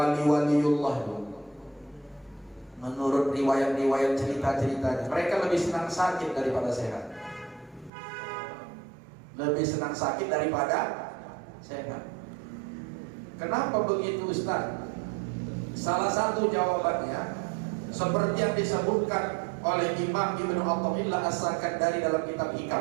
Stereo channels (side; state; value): left; drops out; at 7.9 s